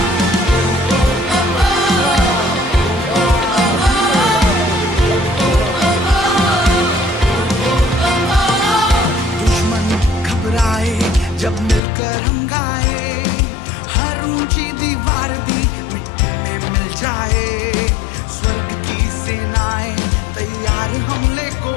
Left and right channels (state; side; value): drops out; right; at 11.8 s